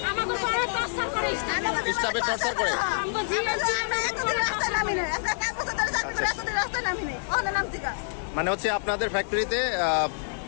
স্টাফের টর্চার করে। মানে হচ্ছে আপনাদের ফ্যাক্টরিতে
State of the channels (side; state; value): right; silent; digital silence